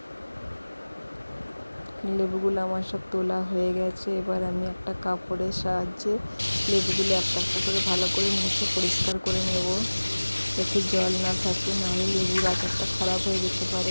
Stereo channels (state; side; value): inverted; both; correlation -1.00